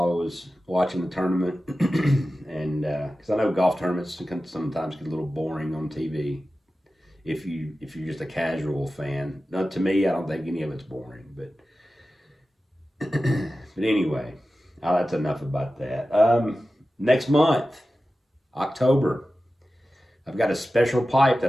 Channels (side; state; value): both; normal; correlation 0.94